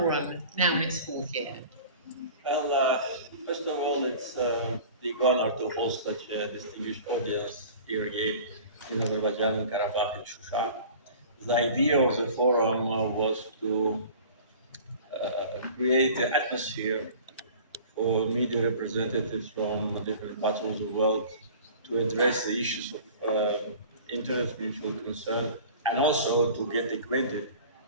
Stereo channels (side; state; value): both; inverted; correlation -0.43